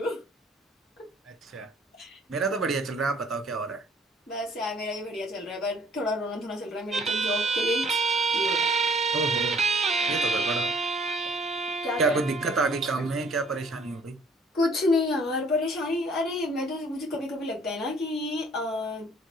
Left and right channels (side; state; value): both; normal; correlation 0.58